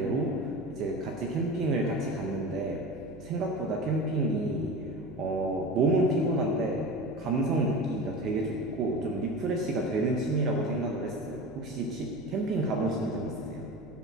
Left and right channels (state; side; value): noise; right; hum, 18 dB below the sound